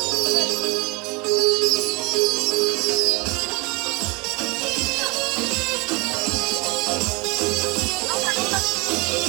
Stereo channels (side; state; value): left; quieter; 27.4 dB